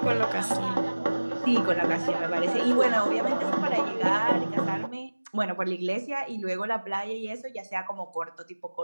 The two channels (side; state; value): both; inverted; correlation -1.00